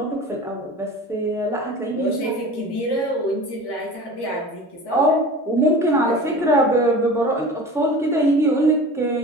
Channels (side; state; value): both; normal; correlation 0.37